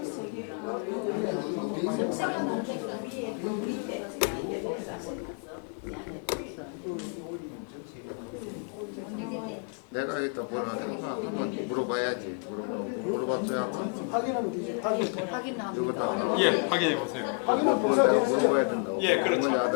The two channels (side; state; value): right; quieter; 36.8 dB